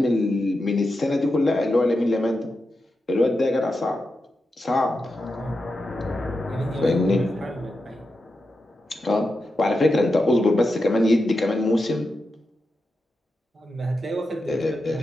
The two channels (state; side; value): normal; both; correlation 0.89